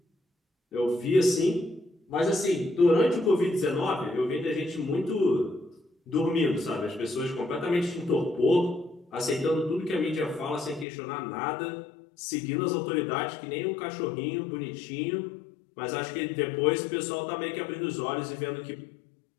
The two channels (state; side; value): drops out; right; at 10.9 s